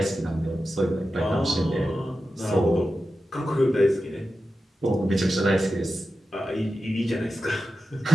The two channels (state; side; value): normal; both; correlation 0.93